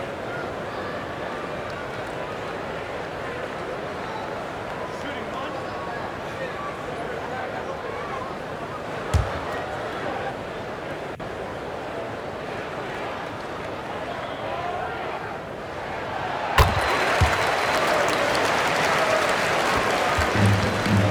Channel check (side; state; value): both; identical; correlation 1.00